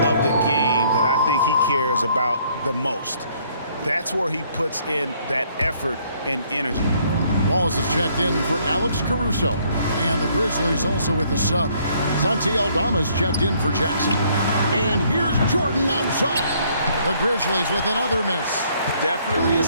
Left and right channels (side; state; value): both; inverted; correlation -0.65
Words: of the game that I think he cares about the most. That's where he puts in that effort and energy. Wallace is checked in for Alex Caruso. And the Grizzlies also with the sub. Santi Aldama's checked in for Jackson. And here's Jordan outside. The Grizzlies with another miss. Definitely a